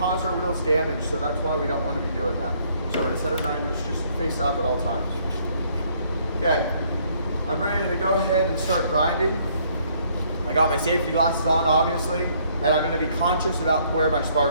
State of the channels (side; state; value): both; inverted; correlation -0.65